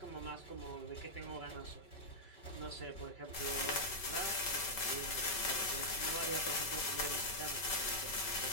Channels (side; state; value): right; late; 5.3 ms